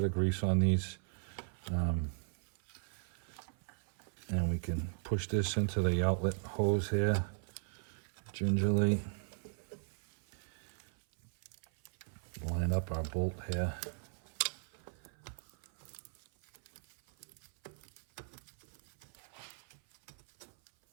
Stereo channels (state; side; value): silent; left; 53 dB below the other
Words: of grease on these. And we can push this into the outlet hose here gingerly. Line up our bolt here.